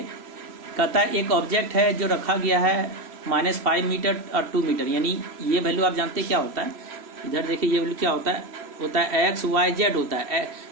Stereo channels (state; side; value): late; left; 3.0 ms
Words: कहता है एक ऑब्जेक्ट है जो रखा गया है -5 मीटर और 2 मीटर, यानी ये वैल्यू आप जानते हैं क्या होता है। इधर देखिए ये वैल्यू क्या होता है एक्स वाई जेड होता है।